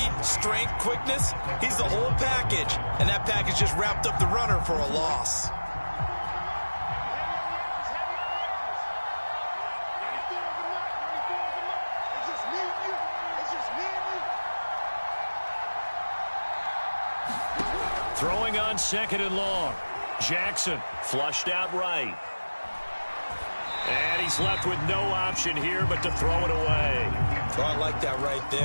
strength, quickness, he's the whole package. And that package just wrapped up the runner for a loss. Throwing on 2nd and long. Jackson flushed out right. And he's left with no option here but to throw it away. Oh, I like that right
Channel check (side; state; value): both; inverted; correlation -1.00